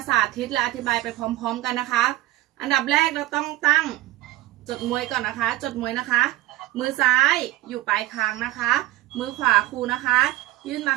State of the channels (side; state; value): left; quieter; 16.5 dB